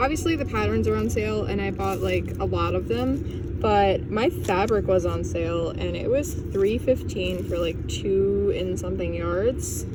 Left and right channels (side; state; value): both; identical; correlation 1.00